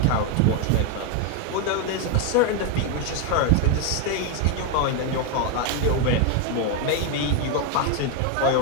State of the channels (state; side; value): different; both; correlation 0.02